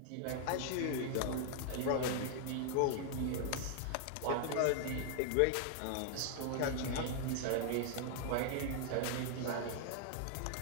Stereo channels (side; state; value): both; different; correlation 0.00